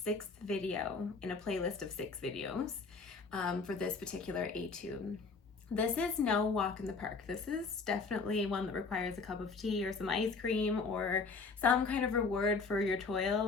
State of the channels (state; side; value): quieter; right; 4.5 dB